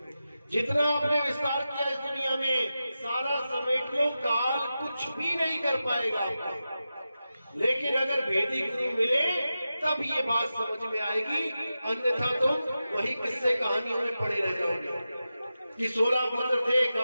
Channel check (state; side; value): inverted; both; correlation -0.92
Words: जितना आपने विस्तार किया इस दुनिया में, सारा समेट लो, काल कुछ भी नहीं कर पाएगा आपका। लेकिन अगर भेदी गुरु मिले तब ये बात समझ में आएगी, अन्यथा तुम वही किस्से कहानियों में पड़े रह जाओगे कि 16 पुत्र थे,